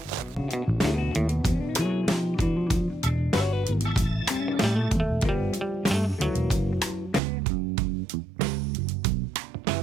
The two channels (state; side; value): drops out; left; at 7.2 s